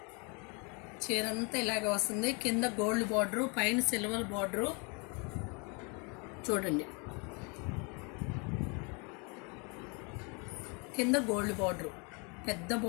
చీర అంతా ఇలాగ వస్తుంది. కింద గోల్డ్ బార్డరు, పైన సిల్వర్ బార్డరు చూడండి. కింద గోల్డ్ బార్డరు, పెద్ద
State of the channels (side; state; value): right; quieter; 32.7 dB